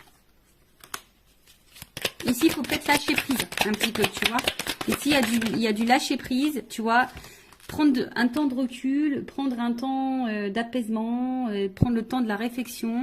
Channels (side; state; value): both; identical; correlation 1.00